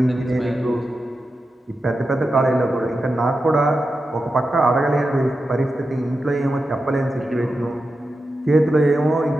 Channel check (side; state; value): both; normal; correlation 0.90